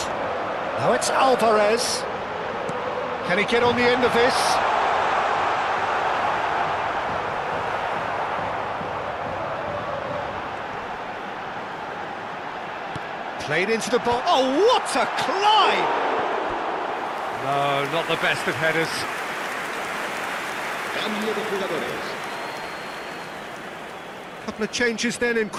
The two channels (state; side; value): identical; both; correlation 1.00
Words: Now it's Alvarez. Can he get on the end of this? Played into the ball. Oh, what a climb! No, not the best of headers. Cambio de jugadores. Couple of changes then in